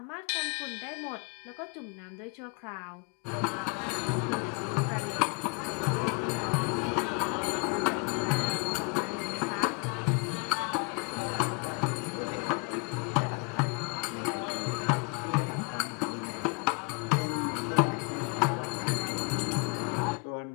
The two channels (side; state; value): right; quieter; 32.7 dB